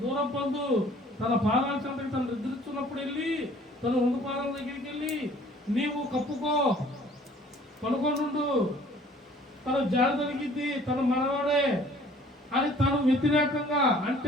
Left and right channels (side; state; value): both; normal; correlation 0.54